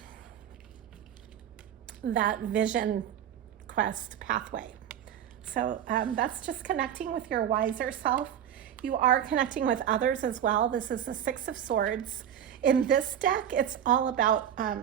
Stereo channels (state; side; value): quieter; left; 9.8 dB